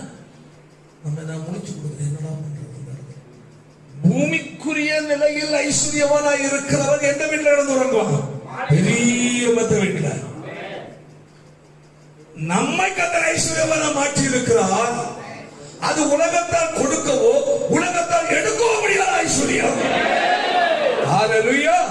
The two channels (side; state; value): both; identical; correlation 1.00